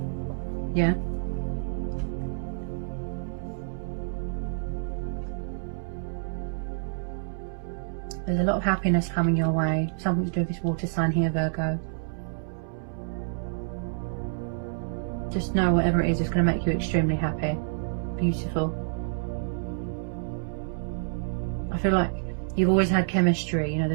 yeah? There's a lot of happiness coming your way. Something to do with this water sign here, Virgo. Just know whatever it is, it's going to make you extremely happy. Beautiful. I feel like you've always had chemistry, you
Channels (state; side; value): silent; left; 59 dB below the other